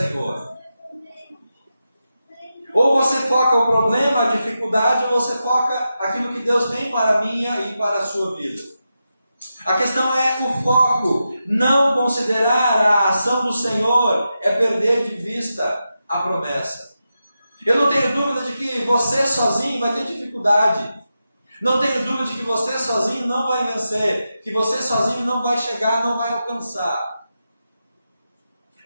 Ou você foca o problema, a dificuldade, ou você foca aquilo que Deus tem para a minha e para a sua vida. A questão é o foco. Não considerar a ação do Senhor é perder de vista a promessa. Eu não tenho dúvida de que você sozinho vai ter dificuldade. Não tenho dúvida de que você sozinho não vai vencer, que você sozinho não vai chegar, não vai alcançar.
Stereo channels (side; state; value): both; inverted; correlation -0.89